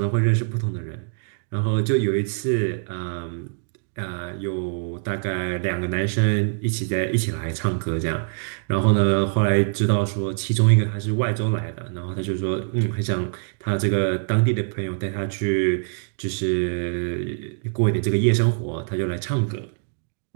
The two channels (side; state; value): left; silent; digital silence